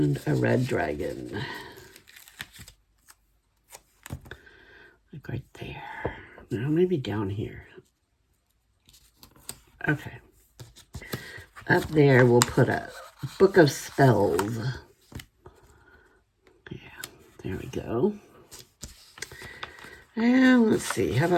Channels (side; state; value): both; identical; correlation 1.00